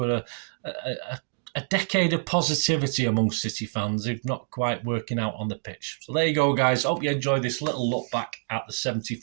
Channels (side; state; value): left; silent; digital silence